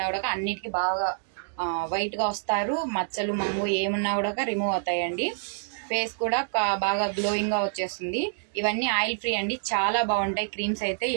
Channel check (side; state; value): left; silent; digital silence